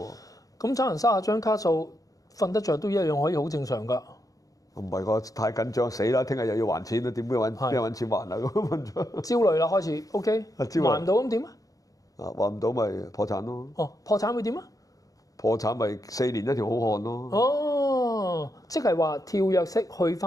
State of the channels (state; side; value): late; right; 0.17 ms